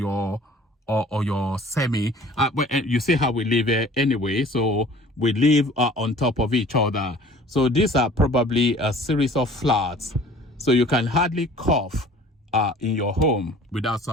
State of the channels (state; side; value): normal; both; correlation 0.49